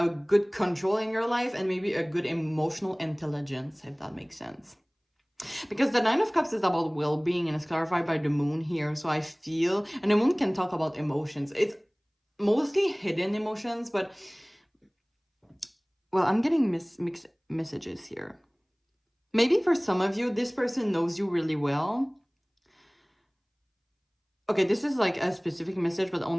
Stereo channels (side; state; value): both; identical; correlation 1.00